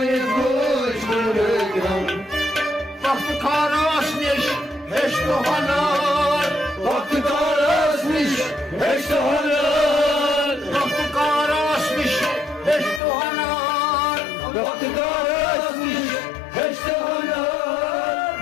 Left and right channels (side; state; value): right; drops out; at 13.0 s